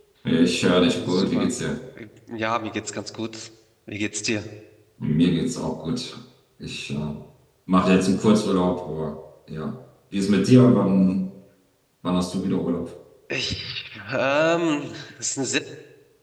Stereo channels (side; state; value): both; identical; correlation 1.00